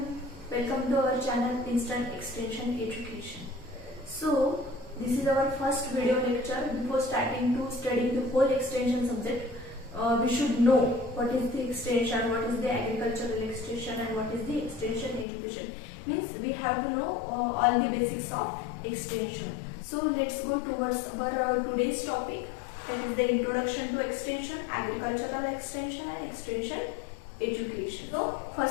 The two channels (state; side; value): drops out; right; at 15.2 s